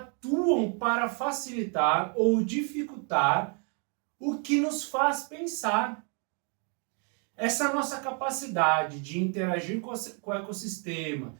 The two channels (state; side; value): quieter; left; 38.3 dB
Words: para facilitar ou dificultar o que nos faz pensar. Essa nossa capacidade de interagir com o ecossistema,